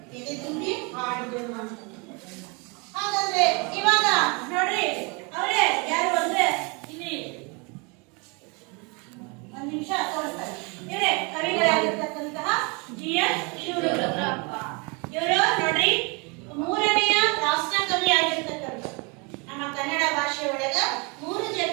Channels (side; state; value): left; quieter; 30.9 dB